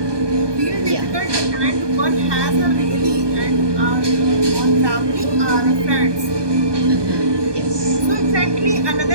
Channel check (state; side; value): late; left; 1.2 ms